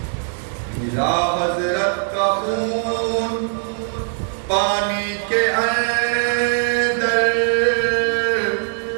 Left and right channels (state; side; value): silent; left; digital silence